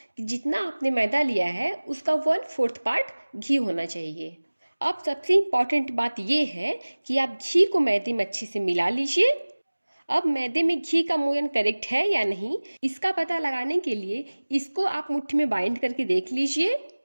कि जितना आपने मैदा लिया है उसका 1/4 पार्ट घी होना चाहिए। अब सबसे इम्पॉर्टेंट बात ये है कि आप घी को मैदे में अच्छे से मिला लीजिए। अब मैदे में घी का मोयन करेक्ट है या नहीं, इसका पता लगाने के लिए इसको आप मुट्ठी में बाइंड करके देख लीजिए।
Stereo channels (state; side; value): inverted; both; correlation -1.00